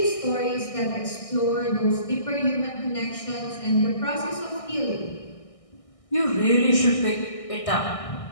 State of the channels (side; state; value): right; late; 1.6 ms